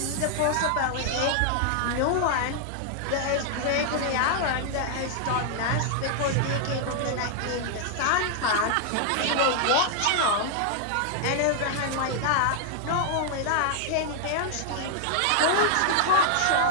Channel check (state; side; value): different; both; correlation -0.01